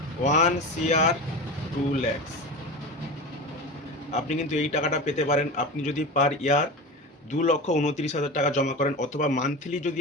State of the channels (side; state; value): both; normal; correlation 0.27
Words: 1 CR 2 lakhs। আপনি কিন্তু এই টাকাটা পেতে পারেন আপনি যদি পার ইয়ার 2,29,000 টাকা জমা করেন, অথবা মান্থলি যদি